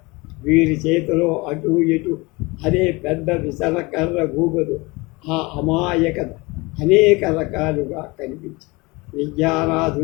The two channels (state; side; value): quieter; right; 24.6 dB